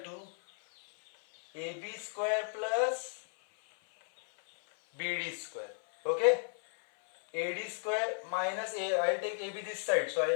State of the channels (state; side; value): silent; right; 55 dB below the other